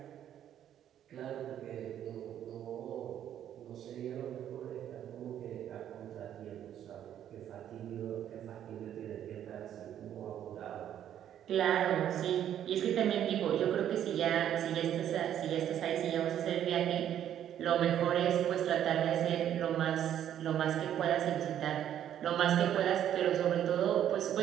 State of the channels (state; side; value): quieter; left; 10.5 dB